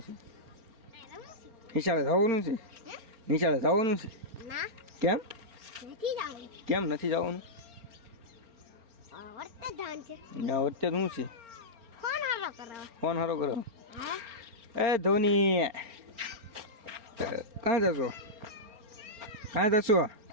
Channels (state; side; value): late; left; 4.4 ms